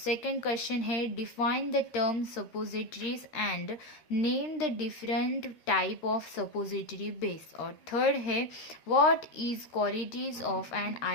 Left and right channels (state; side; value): late; right; 13 ms